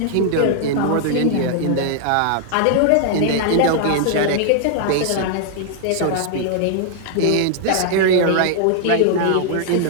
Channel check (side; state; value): both; different; correlation -0.01